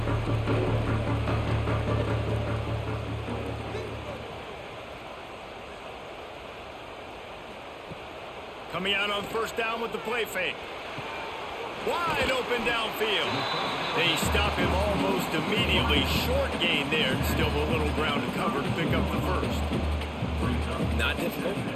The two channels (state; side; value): identical; both; correlation 1.00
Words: Coming out on first down with the play fake. Wide open downfield. They stop him almost immediately. Short gain there. Still a little ground to cover to pick up the first. Not difficult,